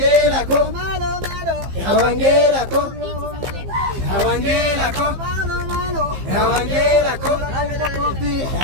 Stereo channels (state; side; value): late; left; 15 ms